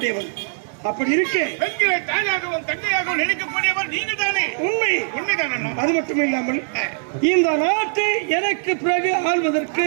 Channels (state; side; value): silent; left; 65 dB below the other